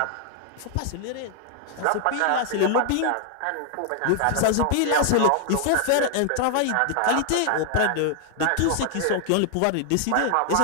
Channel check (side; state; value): both; different; correlation 0.00